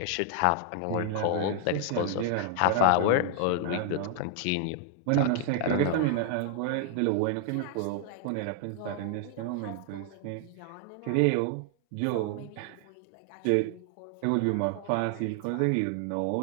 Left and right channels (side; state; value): both; different; correlation 0.00